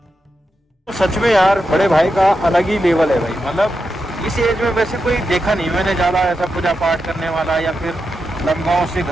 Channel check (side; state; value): both; normal; correlation 0.87